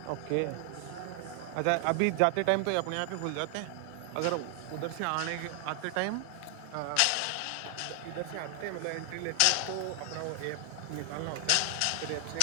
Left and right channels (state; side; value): different; both; correlation 0.00